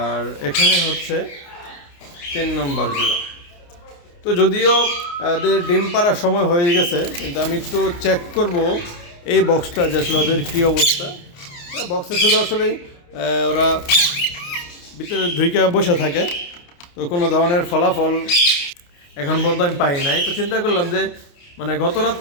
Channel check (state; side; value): late; right; 29 ms